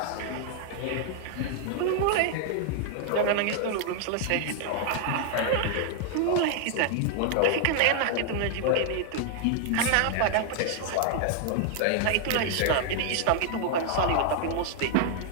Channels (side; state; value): both; different; correlation 0.00